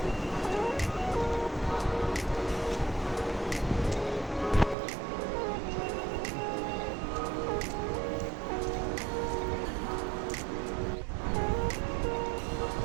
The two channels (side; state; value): left; drops out; at 4.8 s